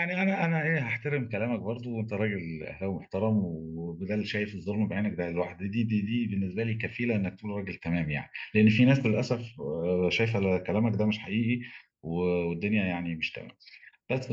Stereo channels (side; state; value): both; identical; correlation 1.00